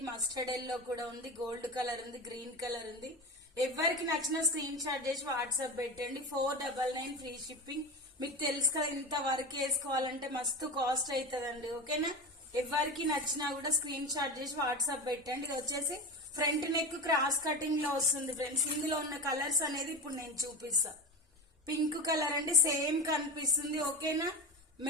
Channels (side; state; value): both; normal; correlation 0.23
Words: మస్టర్డ్ ఎల్లో కూడా ఉంది, గోల్డ్ కలర్ ఉంది, గ్రీన్ కలర్ ఉంది. ఎవరికి నచ్చిన స్క్రీన్ షాట్ చేసి వాట్సాప్ పెట్టండి. 499 ఫ్రీ షిప్పింగ్. మీకు తెలుసు కదా, ఇంత వర్క్ వేసుకోవాలంటే మస్తు కాస్ట్ అవుతుందండి. ఓకేనా? ఎవరికి నచ్చినా కూడా స్క్రీన్ షాట్ చేసి వాట్సాప్ పెట్టండి. ఇది వచ్చేసి ఫ్రంట్ నెక్ క్రాస్ కటింగ్ లో వస్తుంది ఫ్రెండ్స్. ఇందులో ఉన్న కలర్స్ అనేది ఇప్పుడు నేను చూపిస్తా. పింక్ కలర్ అండి, సేమ్ కనిపిస్తుంది. ఓకేనా?